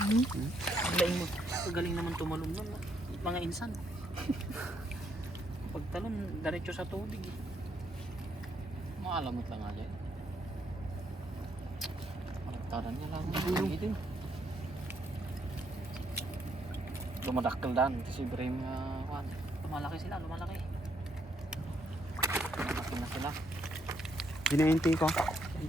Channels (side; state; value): both; normal; correlation 0.74